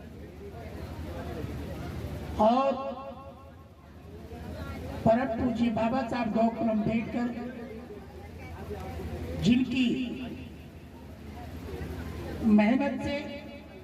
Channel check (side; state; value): both; identical; correlation 1.00